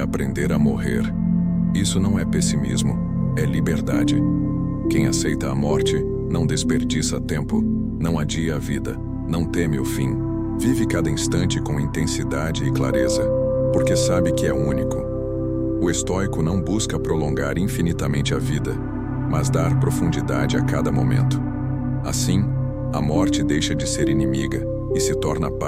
a morrer." Isso não é pessimismo, é liberdade. Quem aceita a morte não desperdiça tempo, não adia a vida, não teme o fim. Vive cada instante com intensidade e clareza, porque sabe que é único. O estoico não busca prolongar infinitamente a vida, mas dar profundidade a cada momento. Assim, a morte deixa de ser inimiga e se torna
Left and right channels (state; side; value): identical; both; correlation 1.00